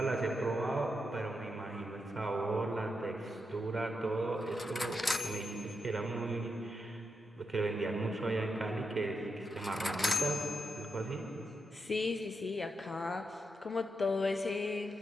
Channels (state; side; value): normal; both; correlation 0.85